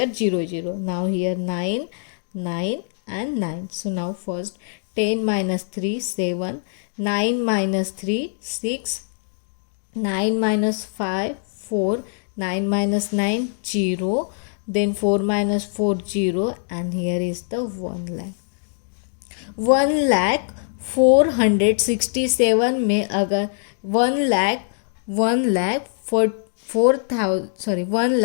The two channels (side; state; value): right; silent; digital silence